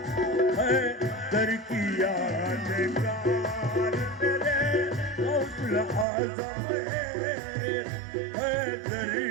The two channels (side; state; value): left; drops out; at 6.1 s